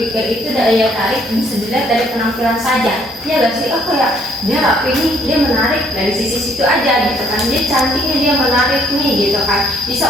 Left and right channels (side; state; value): both; normal; correlation 0.64